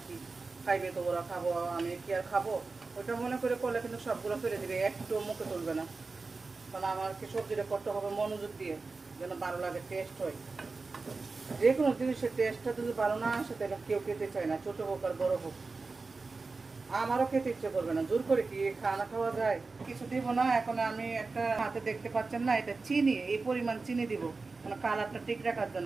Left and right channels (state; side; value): quieter; left; 4.0 dB